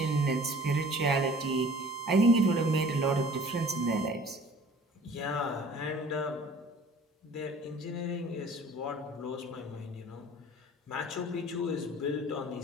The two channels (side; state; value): both; normal; correlation 0.48